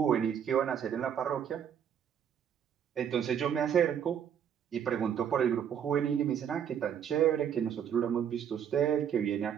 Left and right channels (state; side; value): quieter; left; 8.7 dB